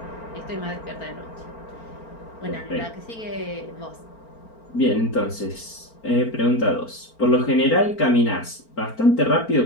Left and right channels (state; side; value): late; right; 4.4 ms